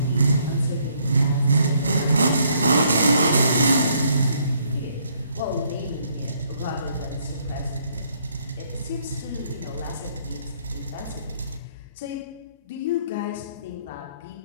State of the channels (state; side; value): inverted; both; correlation -0.68